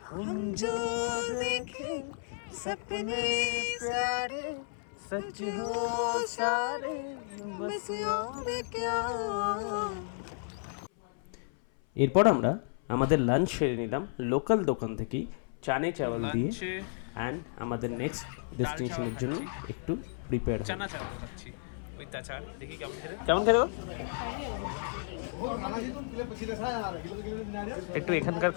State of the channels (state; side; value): silent; right; 56 dB below the other